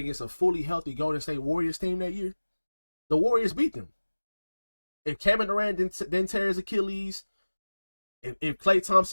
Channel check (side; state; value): both; inverted; correlation -1.00